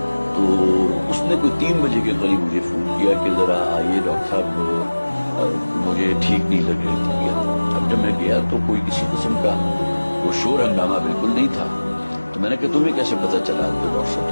تو اس نے کوئی 3 بجے کے قریب مجھے فون کیا کہ ذرا آئیے ڈاکٹر صاحب، مجھے ٹھیک نہیں لگ رہی طبیعت۔ اب جب میں گیا تو کوئی کسی قسم کا وہ شور ہنگامہ بالکل نہیں تھا، تو میں نے کہا تمہیں کیسے پتہ چلا؟ تو ڈاکٹر صاحب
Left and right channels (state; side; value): inverted; both; correlation -1.00